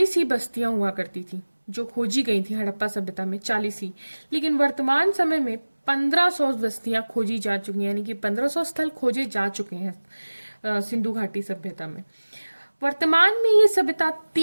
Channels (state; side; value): inverted; both; correlation -1.00